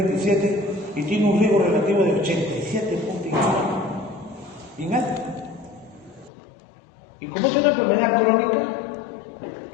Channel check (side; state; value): right; drops out; at 6.3 s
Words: y tiene un riesgo relativo de 87.1, bien alto. Y como es una enfermedad crónica,